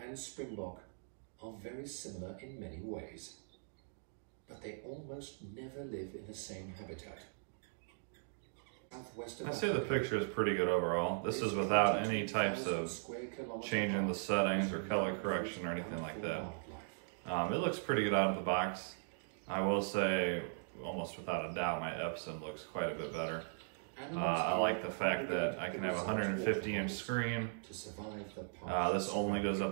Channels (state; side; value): silent; left; digital silence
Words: and Springbok are very similar in many ways, but they almost never live in the same habitat. Southwest of I'd say the picture is pretty good overall. This is without any types of changing the settings or color correction or anything like that. It looks pretty good out of the box. I will say, almost without a doubt, my Epson looks quite a bit better. I like the fact that I can have a 150-inch screen. This only goes up